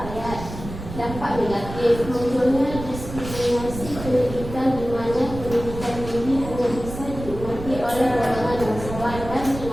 Dampak negatif: munculnya diskriminasi pendidikan di mana pendidikan tinggi hanya bisa dinikmati oleh golongan bangsawan dan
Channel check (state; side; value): noise; right; rumble, 10 dB below the sound